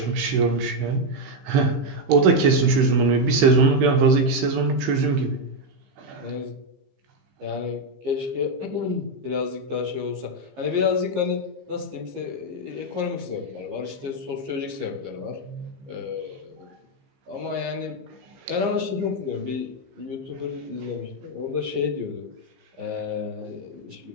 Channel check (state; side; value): late; left; 16 ms